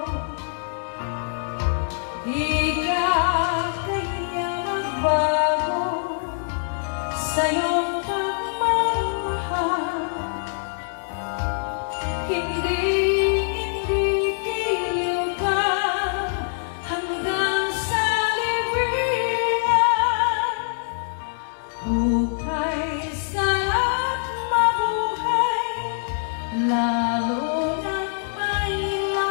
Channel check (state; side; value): silent; right; 63 dB below the other